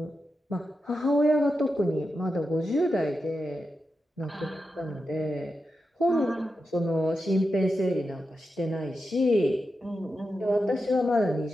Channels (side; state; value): both; normal; correlation 0.89